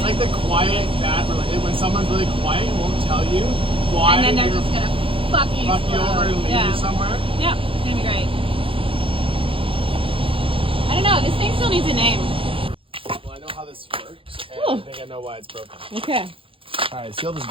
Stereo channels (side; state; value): left; late; 0.26 ms